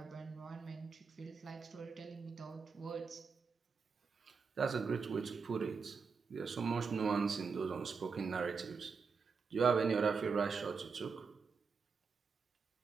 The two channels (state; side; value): quieter; left; 5.3 dB